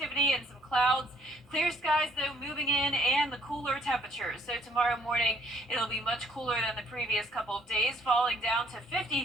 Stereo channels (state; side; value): normal; both; correlation 0.64